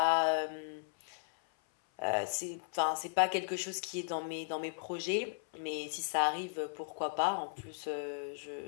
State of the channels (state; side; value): silent; right; 54 dB below the other